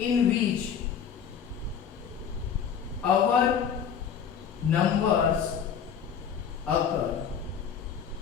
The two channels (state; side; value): quieter; right; 7.7 dB